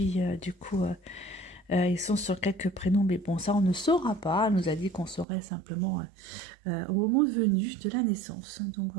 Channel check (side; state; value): left; drops out; at 5.2 s